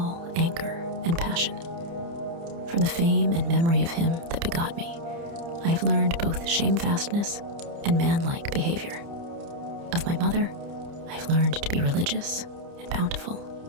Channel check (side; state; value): left; late; 30 ms